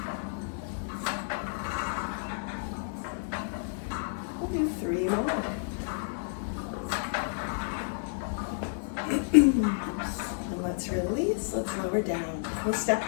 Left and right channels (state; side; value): silent; right; digital silence